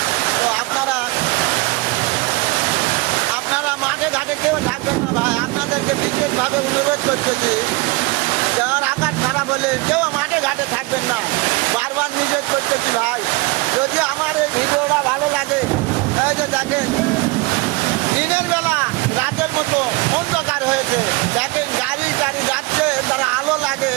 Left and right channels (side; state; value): left; quieter; 23.4 dB